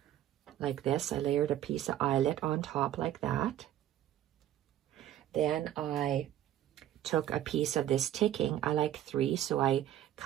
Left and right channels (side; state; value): left; quieter; 12.1 dB